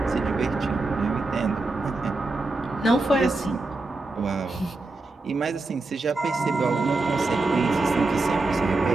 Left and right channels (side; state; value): left; quieter; 3.2 dB